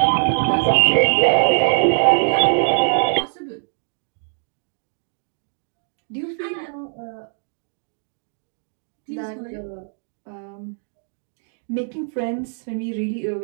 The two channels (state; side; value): silent; left; digital silence